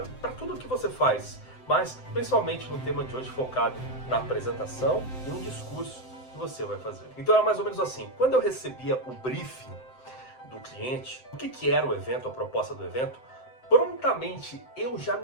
para tudo que você faz. Mas principalmente no tema de hoje focado na apresentação e no discurso que você vai fazer. Então era mais ou menos assim, quando eu recebia o briefing do cliente, o que era o evento, a proposta do evento, prontamente eu já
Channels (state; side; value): late; right; 7.8 ms